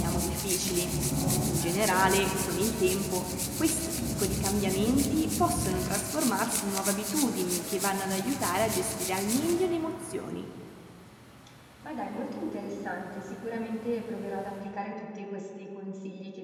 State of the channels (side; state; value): both; identical; correlation 1.00